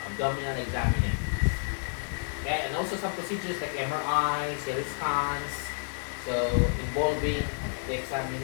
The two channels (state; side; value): silent; right; 58 dB below the other